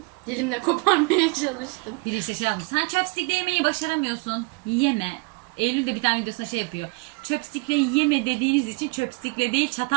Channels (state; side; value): quieter; left; 28.7 dB